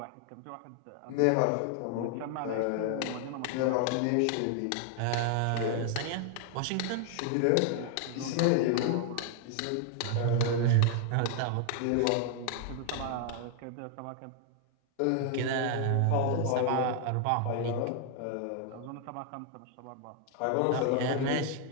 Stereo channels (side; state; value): both; different; correlation 0.00